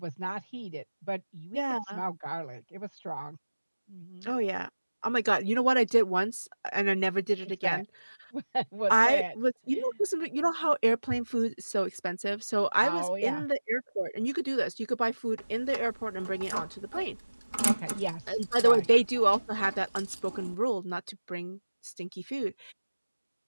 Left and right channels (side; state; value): both; inverted; correlation -1.00